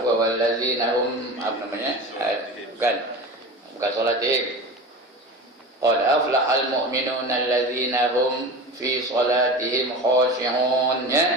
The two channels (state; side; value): normal; both; correlation 0.31